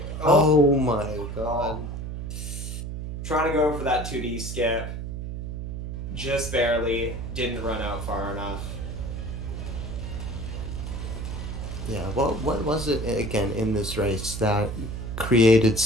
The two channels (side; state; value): right; noise; hum, 6 dB below the sound